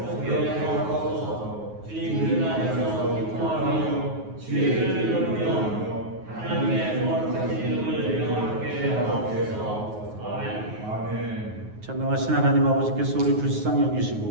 하나님께서 우리 불쌍히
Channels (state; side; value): late; left; 9.4 ms